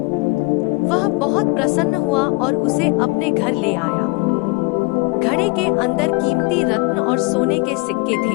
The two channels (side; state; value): right; quieter; 27.2 dB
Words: वह बहुत प्रसन्न हुआ और उसे अपने घर ले आया। घड़े के अंदर कीमती रत्न और सोने के सिक्के